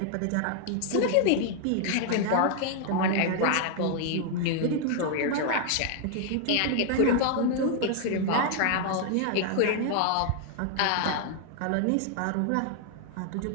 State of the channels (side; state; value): both; different; correlation 0.00